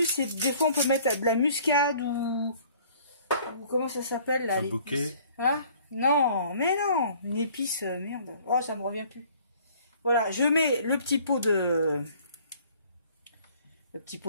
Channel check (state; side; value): inverted; both; correlation -0.55